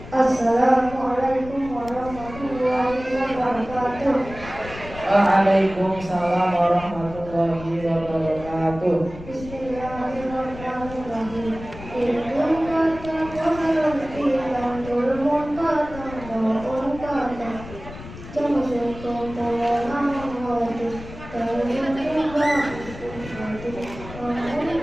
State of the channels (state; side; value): noise; left; rumble, 14 dB below the sound